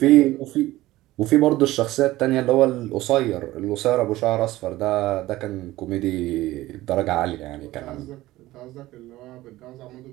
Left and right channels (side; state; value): left; quieter; 17.0 dB